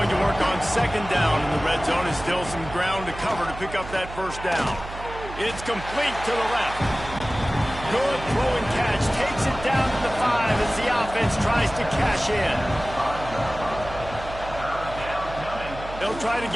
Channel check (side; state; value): right; noise; hum, 12 dB below the sound